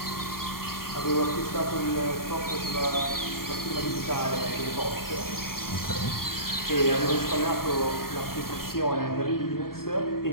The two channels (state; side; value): late; right; 0.93 ms